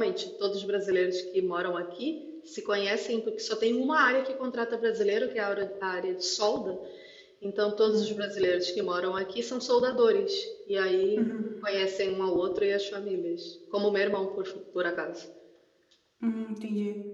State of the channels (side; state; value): both; identical; correlation 1.00